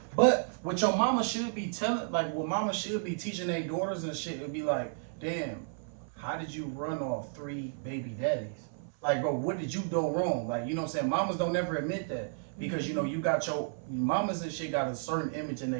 But what your mama should be telling, like what mama should be teaching their daughters and shit, would be like, damn, how did you run off 3 baby daddies? Like, bro, what did you do wrong? Like, you know what I'm saying? Mamas don't never admit that. Because, you know, you got your mamas and shit got a certain image in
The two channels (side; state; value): left; silent; 56 dB below the other